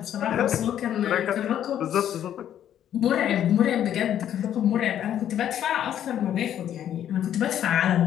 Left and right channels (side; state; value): right; quieter; 10.5 dB